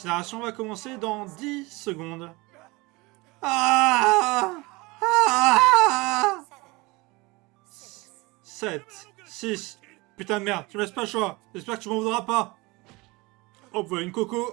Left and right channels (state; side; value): quieter; left; 23.8 dB